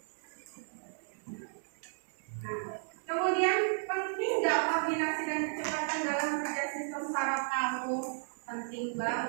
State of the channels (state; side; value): silent; left; 55 dB below the other